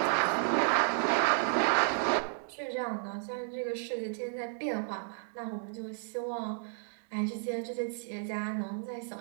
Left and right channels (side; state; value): left; silent; digital silence